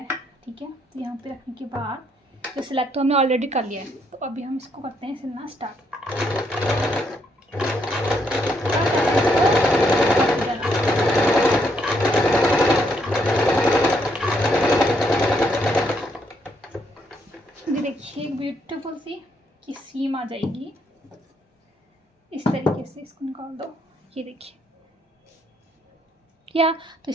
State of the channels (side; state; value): both; normal; correlation 0.74